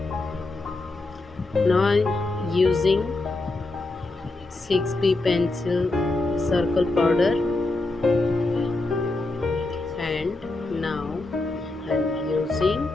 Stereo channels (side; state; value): right; quieter; 3.0 dB